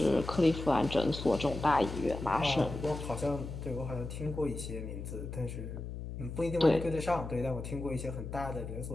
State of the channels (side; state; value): left; noise; hum, 8 dB below the sound